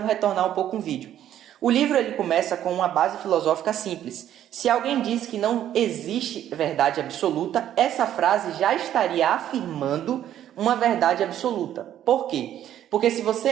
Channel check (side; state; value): left; quieter; 11.3 dB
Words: retornar um pouco o vídeo. O livro ele começa com uma base filosófica simples. Se alguém diz que não existe verdade absoluta, essa frase já estaria afirmando uma verdade absoluta. Por quê? Porque se você